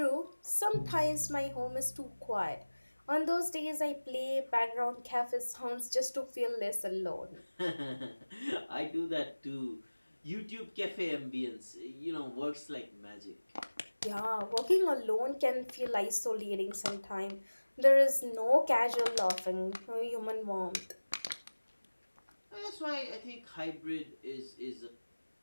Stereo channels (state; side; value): inverted; both; correlation -1.00